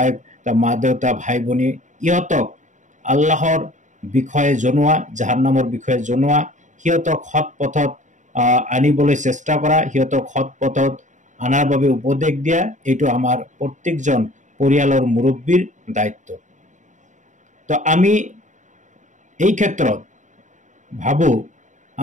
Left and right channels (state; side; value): late; left; 0.36 ms